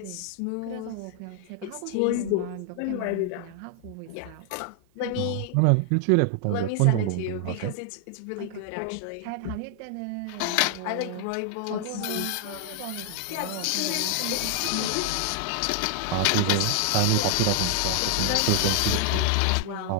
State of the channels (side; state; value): both; different; correlation 0.00